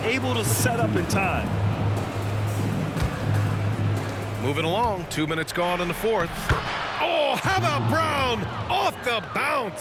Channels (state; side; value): identical; both; correlation 1.00